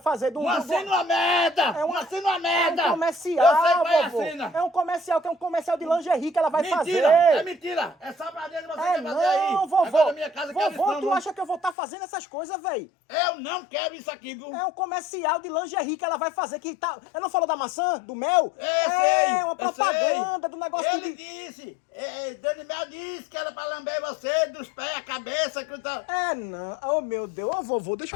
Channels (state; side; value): drops out; right; at 11.8 s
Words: do... Uma cena uma merda! É uma cena uma merda! É um comercial, eu sei qual é a vovô. cena. É um comercial, que é um comercial de lingerie que ela vai Mentira, fazer. é mentira. É sabadeza você quer fazer aí. Não, vovô. Agora na minha casa quero isso, Vovô, não, tu não. acha que eu vou estar fazendo essas coisas, velho? Eu não quero isso aqui, viu? É um comercial de lingerie que ela vai fazer, que tá... Ela não falou da maçã, do mel? Sei, uma propaganda do negócio Ele de... disse, Dani Mel disse que era pra lamber você dos pés, a cabeça, que tá... Não. Oh, meu Deus. Ô, vovô, deixa